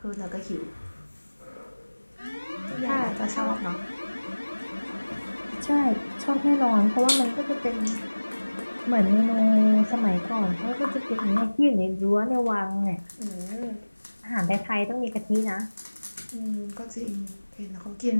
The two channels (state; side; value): inverted; both; correlation -1.00